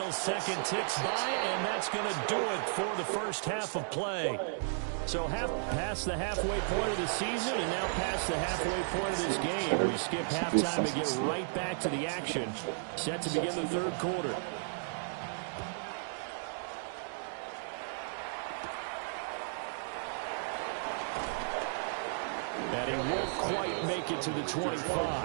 second ticks by, and that's going to do it for the first half of play. So past the halfway point of the season and now past the halfway point of this game. We skip halftime to get right back to the action. Set to begin the 3rd quarter. And he won't quite make it to the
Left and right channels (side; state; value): left; silent; digital silence